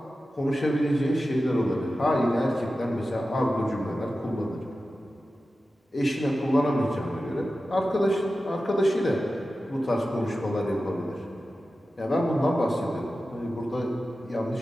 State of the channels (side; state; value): both; normal; correlation 0.93